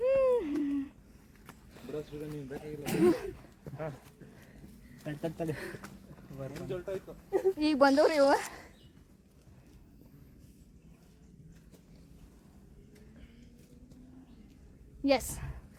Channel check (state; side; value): identical; both; correlation 1.00